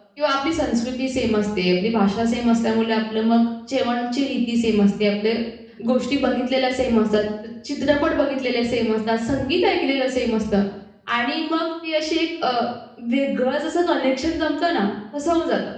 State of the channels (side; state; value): both; identical; correlation 1.00